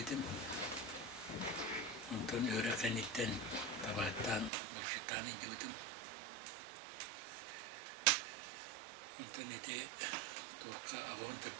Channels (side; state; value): left; drops out; at 4.5 s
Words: Ondan öğre kanitten tabattan buluştan indiyordum. Ondan ete torka avon